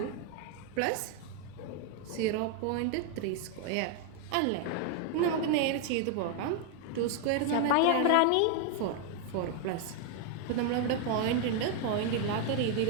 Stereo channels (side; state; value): both; different; correlation 0.00